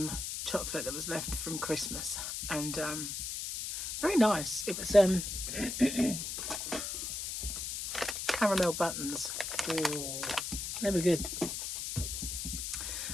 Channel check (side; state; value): left; noise; hiss, 4 dB below the sound